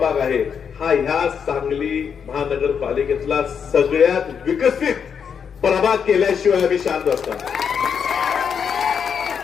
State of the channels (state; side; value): quieter; right; 7.0 dB